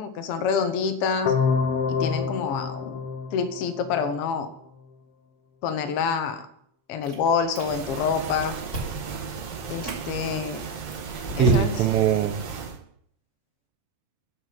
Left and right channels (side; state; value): right; late; 7.2 ms